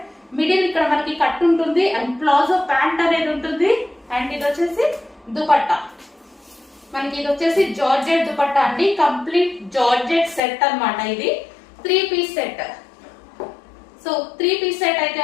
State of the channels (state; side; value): drops out; right; at 10.4 s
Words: మిడిల్ ఇక్కడ మనకి కట్ ఉంటుంది అండ్ ప్లాజో ప్యాంట్ అనేది ఉంటుంది. అండ్ ఇది వచ్చేసి దుపట్టా. మనకి ఇది వచ్చేసి జార్జెట్ దుపట్టా అండి. కంప్లీట్ జార్జెట్ సెట్ అన్నమాట. ఇది 3 piece set. So 3 piece set అయితే